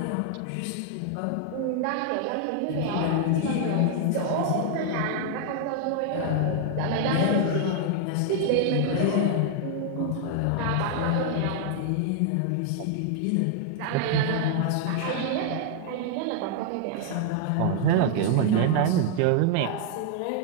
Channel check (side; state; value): both; different; correlation 0.00